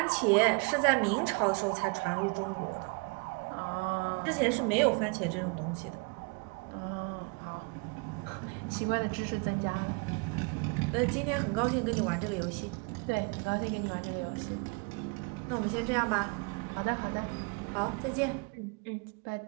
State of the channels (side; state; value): left; quieter; 32.8 dB